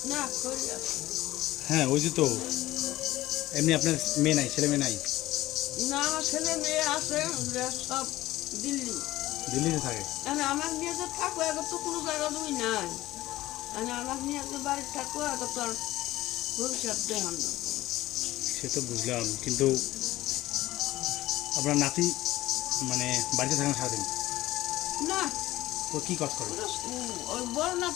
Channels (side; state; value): right; quieter; 16.5 dB